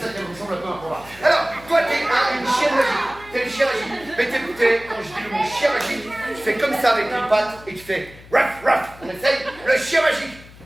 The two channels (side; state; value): left; noise; hum, 21 dB below the sound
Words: ça qu'elle ressemble un peu à un combat. Alors, toi, t'es une chienne magique, t'es le chien magique. Mais quand je dis le mot chien magique, tu fais comme ça avec les pattes et tu fais ruff, ruff. On essaye, le chien magique.